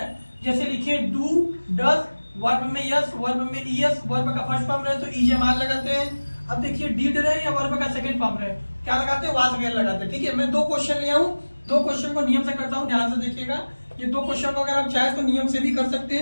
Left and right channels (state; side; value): inverted; both; correlation -1.00